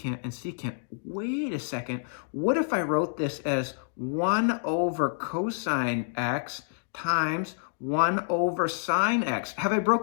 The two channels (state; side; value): silent; right; digital silence